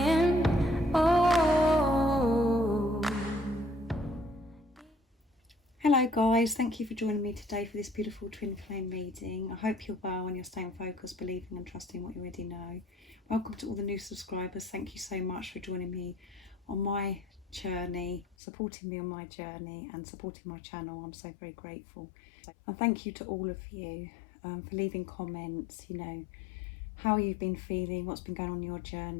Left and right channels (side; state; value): right; drops out; at 18.2 s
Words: oh. Hello guys, thank you for joining me today for this beautiful twin flame reading. I hope you're well and you're staying focused, believing and trusting what you already know. Welcome to all the new subscribers. Thank you so much for joining me on my journey, supporting me on my journey and supporting my channel. I'm so very grateful. And thank you to all of you for leaving comments, how you've been feeling, what's been going on in your